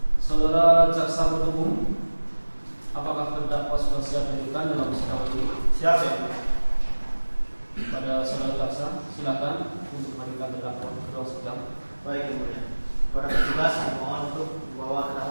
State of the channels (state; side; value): inverted; both; correlation -1.00